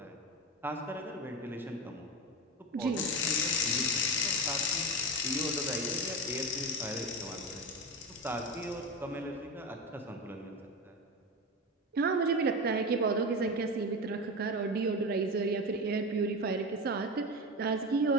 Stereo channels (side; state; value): both; normal; correlation 0.22